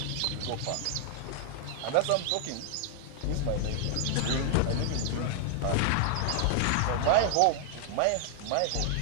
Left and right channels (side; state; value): both; different; correlation 0.00